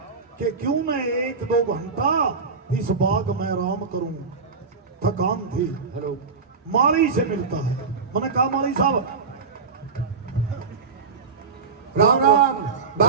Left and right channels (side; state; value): left; quieter; 4.9 dB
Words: कि क्यों मैं 1-2 घंटा इस बाग में आराम करूं। थकान थी। हेलो, माली से मिलता है। मैंने कहा माली साहब, राम राम,